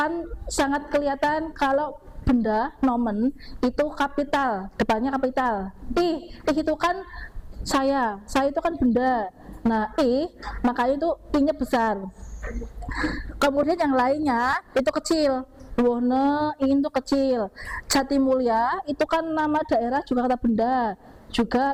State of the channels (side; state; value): both; identical; correlation 1.00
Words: sangat kelihatan kalau benda nomen itu kapital, depannya kapital. Itu kan saya itu kan benda. Nah, makanya itu I-nya besar. Kemudian yang lainnya itu kecil. Wohne, ingin itu kecil. Jatimulya itu kan nama daerah juga kata benda. Juga